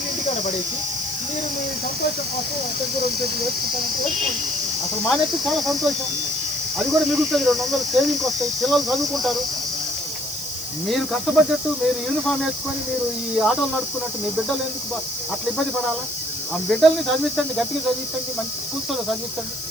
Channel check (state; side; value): noise; left; hiss, 9 dB below the sound